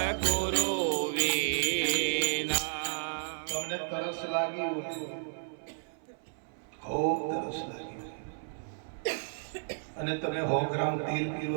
તરસ લાગી હોય, ખૂબ તરસ લાગી હોય, અને તમે 100 ગ્રામ તેલ પીવો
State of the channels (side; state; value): left; silent; 56 dB below the other